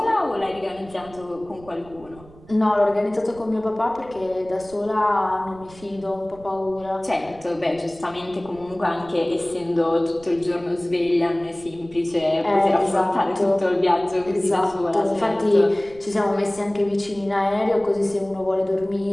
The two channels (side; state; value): right; noise; rumble, 21 dB below the sound